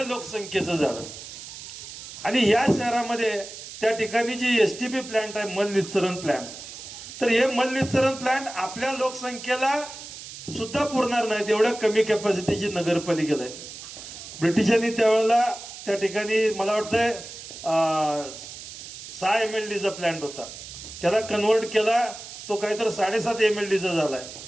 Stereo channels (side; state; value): right; noise; hiss, 13 dB below the sound